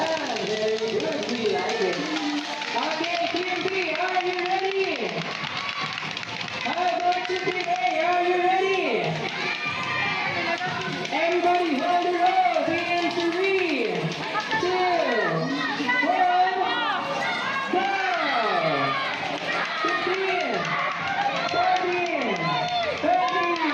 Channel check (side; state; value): both; identical; correlation 1.00